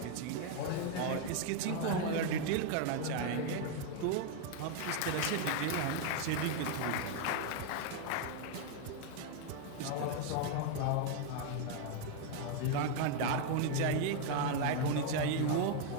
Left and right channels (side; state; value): both; different; correlation 0.01